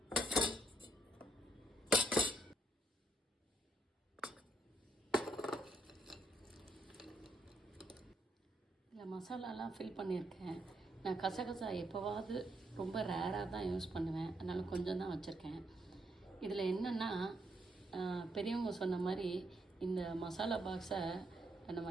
இதில் மசாலாலாம் ஃபில் பண்ணியிருக்கேன். நான் கசகசா எப்போவாவது ரொம்ப ரேராக தான் யூஸ் பண்ணுவேன். அதனால் கொஞ்சம் தான் வச்சுருக்கேன். இதில் என்னென்னா, பெரியவங்க சொன்ன மாதிரி இந்த மசாலா பாக்ஸை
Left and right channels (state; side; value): normal; both; correlation 0.76